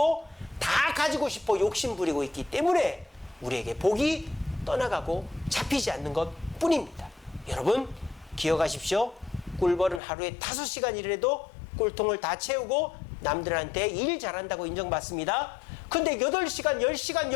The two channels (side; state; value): right; drops out; at 10.0 s